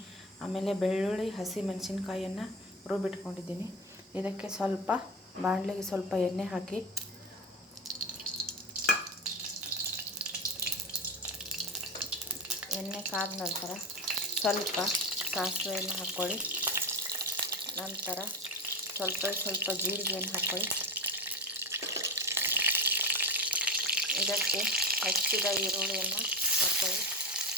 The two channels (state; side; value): normal; both; correlation 0.22